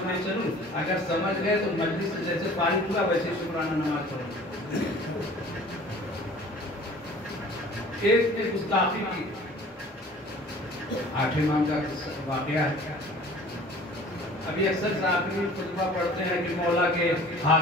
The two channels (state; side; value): normal; both; correlation 0.47